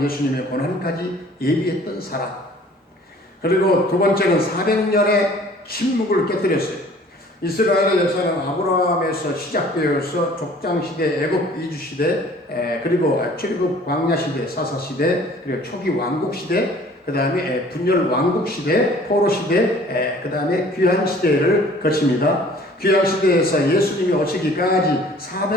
예수님의 고난까지 예비했던 사람. 그리고 두 번째는 400년의 침묵을 깨뜨렸어요. 이스라엘의 역사는 아브라함에서 시작되어서 족장시대, 애굽 이주시대, 그리고 출애굽 광야시대, 사사시대, 그리고 초기 왕국시대, 그 다음에 분열 왕국시대, 포로시대, 그 다음에 귀환시대를 거칩니다. 귀환시대에서 예수님이 오시기까지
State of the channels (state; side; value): normal; both; correlation 0.52